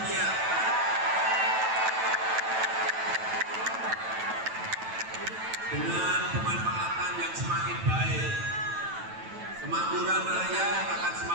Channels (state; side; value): late; left; 9.1 ms